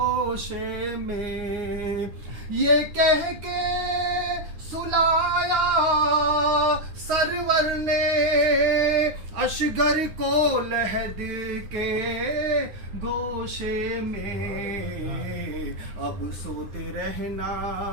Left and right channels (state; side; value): late; left; 9.4 ms